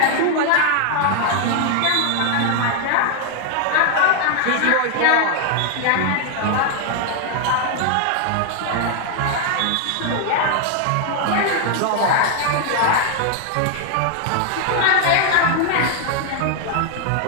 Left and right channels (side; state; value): both; different; correlation 0.00